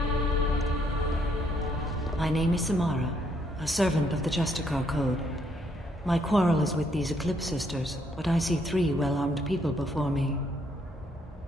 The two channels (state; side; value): normal; both; correlation 0.71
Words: My name is Samara, a servant of the Justicar Code. My quarrel is with these Eclipse sisters, but I see 3 well-armed people before me.